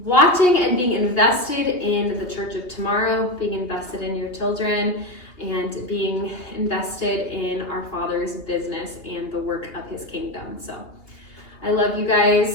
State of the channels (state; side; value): late; right; 2.8 ms